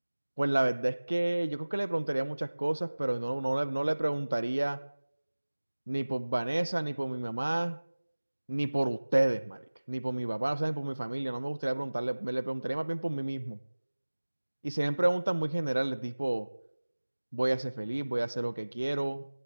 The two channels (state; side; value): inverted; both; correlation -1.00